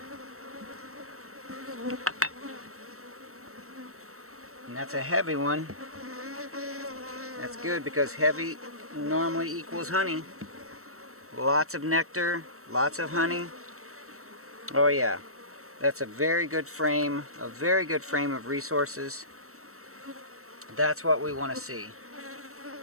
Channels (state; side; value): late; left; 0.63 ms